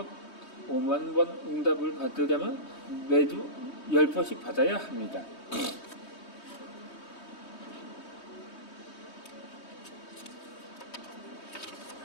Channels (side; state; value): right; late; 3.2 ms